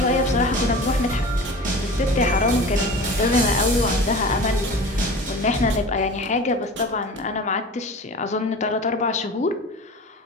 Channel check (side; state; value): both; normal; correlation 0.36